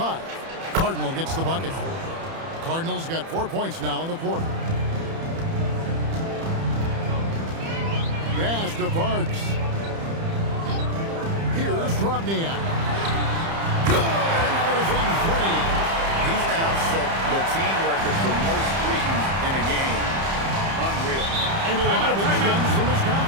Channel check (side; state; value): left; late; 30 ms